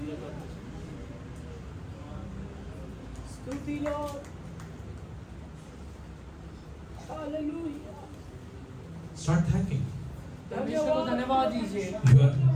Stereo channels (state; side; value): identical; both; correlation 1.00